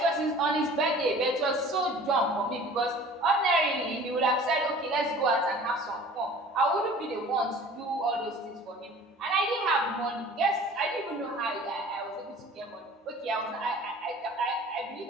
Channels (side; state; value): both; normal; correlation 0.46